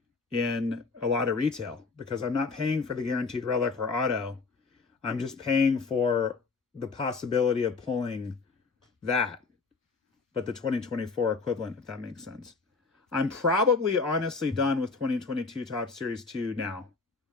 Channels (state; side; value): quieter; right; 4.5 dB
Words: in a lot of retail, because I'm not paying for the guaranteed relic or auto. I'm just paying for the possibility of pulling that, but the 2024 equivalent, if that makes sense. I'm probably honestly done with 2022 Top Series 2 now.